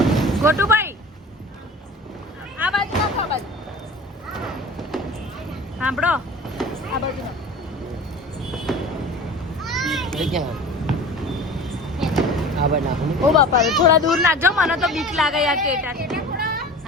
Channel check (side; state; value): both; normal; correlation 0.39